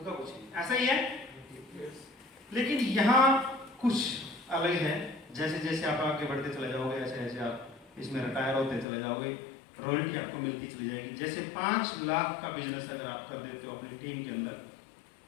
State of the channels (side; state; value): right; drops out; at 8.8 s